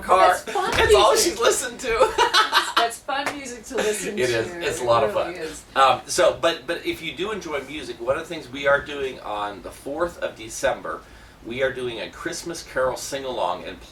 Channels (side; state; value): both; identical; correlation 1.00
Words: car. That's fun It's all music. she's listened to. That's fun music to listen to. It is. It's a lot of fun. Really is. But if you do enjoy music, one of the things we are doing on the 4th of December, we are doing a Christmas Carol sing-along and